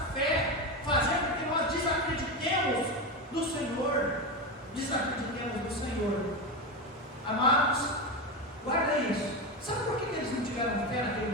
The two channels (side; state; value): both; normal; correlation 0.17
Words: fé, fazer com que nós desacreditemos do Senhor, desacreditemos do Senhor. Amados, guarda isso. Sabe por que eles não tiveram fé naquele